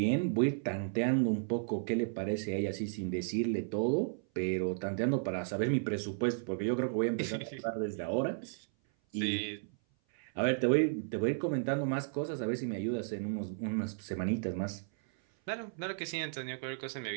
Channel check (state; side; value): silent; left; 55 dB below the other